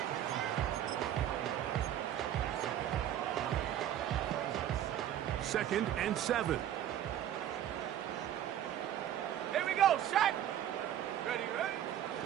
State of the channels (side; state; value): left; quieter; 11.1 dB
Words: Second and 7. Here we go, set. Ready.